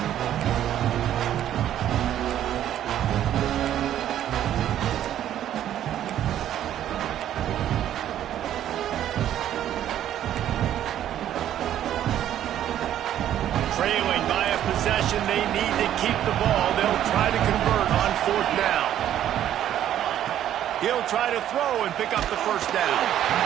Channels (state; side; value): quieter; left; 11.3 dB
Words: Trailing by a possession, they need to keep the ball. They'll try to convert on 4th down. He'll try to throw and pick up the 1st down.